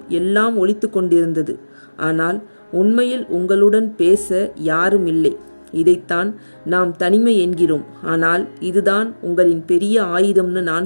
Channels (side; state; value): both; inverted; correlation -1.00